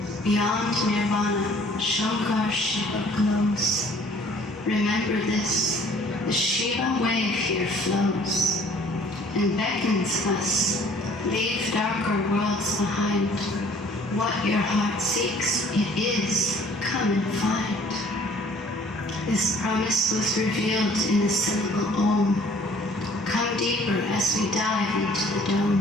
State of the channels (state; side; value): normal; both; correlation 0.55